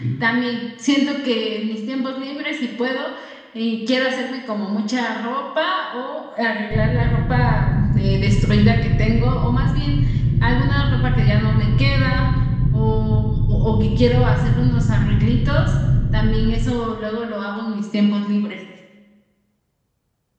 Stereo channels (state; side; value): identical; both; correlation 1.00